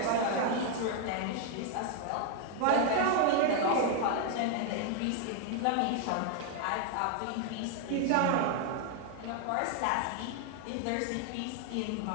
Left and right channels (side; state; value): both; different; correlation 0.00